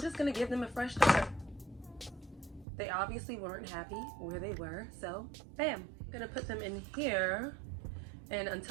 just gonna give them a fresh start. They obviously weren't happy where they were, so bam. I'm gonna put them in here, and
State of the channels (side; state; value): left; drops out; at 2.7 s